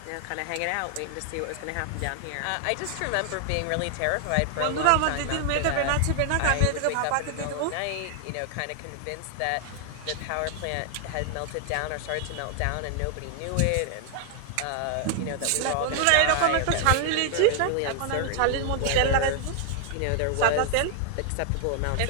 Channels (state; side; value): different; both; correlation 0.00